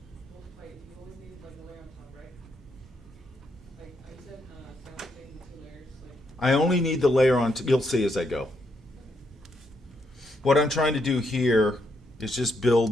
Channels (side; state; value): both; normal; correlation 0.77